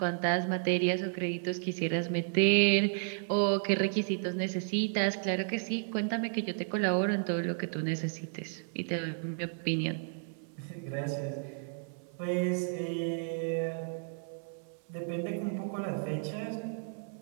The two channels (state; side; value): silent; left; 56 dB below the other